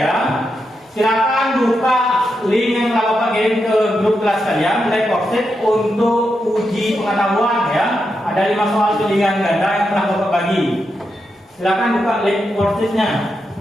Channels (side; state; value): both; normal; correlation 0.85